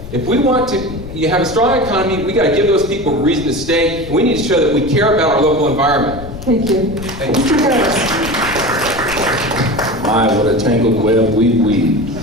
If we want to have a strong economy, we got to give those people a reason to stay. And we need to show that we care about our local environment. Thank you. Thank you. Mr. Harris. My, what a tangled web we weave.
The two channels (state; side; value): noise; left; rumble, 12 dB below the sound